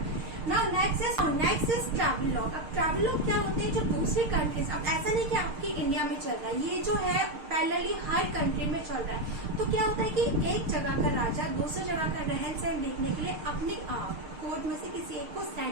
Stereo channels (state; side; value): late; left; 6.6 ms